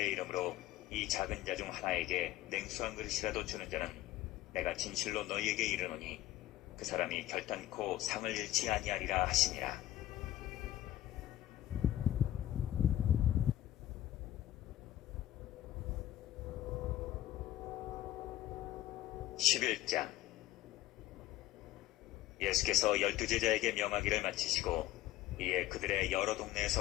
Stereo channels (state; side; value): quieter; right; 14.3 dB